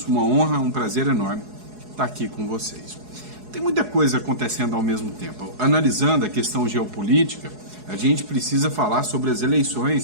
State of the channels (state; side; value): late; left; 4.7 ms